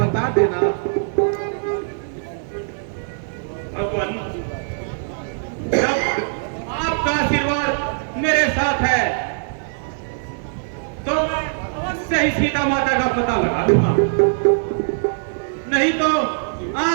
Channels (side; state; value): left; silent; 61 dB below the other